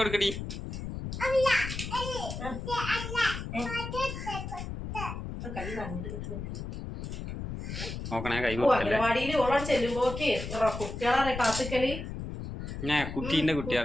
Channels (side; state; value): left; noise; rumble, 7 dB below the sound